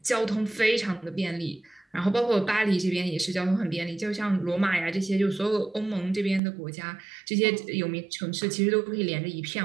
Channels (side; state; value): left; drops out; at 6.4 s